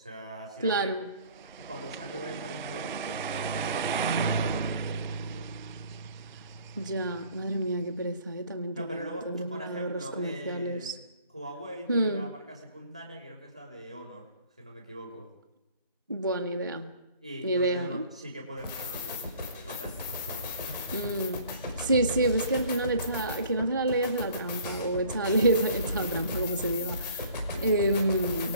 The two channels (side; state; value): both; inverted; correlation -0.53